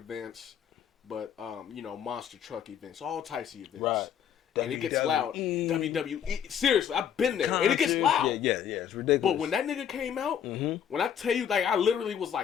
but monster truck events, all types of events. Right. And it gets loud. WWE. Seriously, I've been there. And it gets loud. Yeah, it's ridiculous. But when that nigga came out, when I tell you, like, I literally was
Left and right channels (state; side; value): quieter; right; 8.7 dB